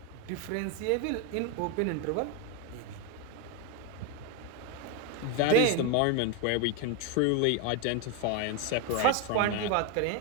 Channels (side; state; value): both; different; correlation 0.02